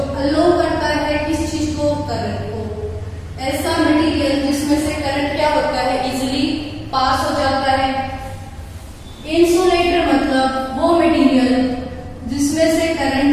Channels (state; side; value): identical; both; correlation 1.00